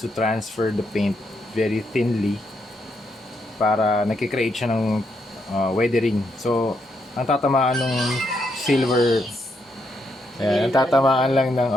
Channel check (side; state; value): both; normal; correlation 0.78